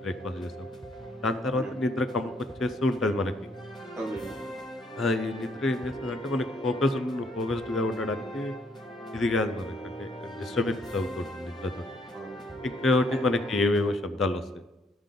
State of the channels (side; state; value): both; normal; correlation 0.69